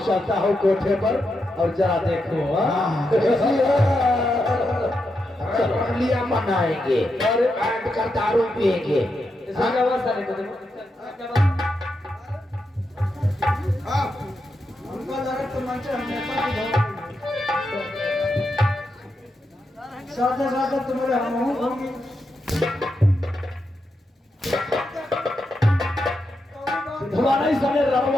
चलता हूँ कोठे पर और जरा देखो। लिया मनाएंगे और बैठ कर दारू पिएंगे। सादा सादा तुम्हारे हम होंगे। तुम्हारा ही साले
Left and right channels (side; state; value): both; normal; correlation 0.85